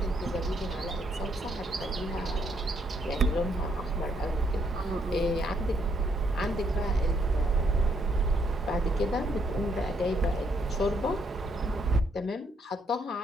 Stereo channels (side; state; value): both; normal; correlation 0.72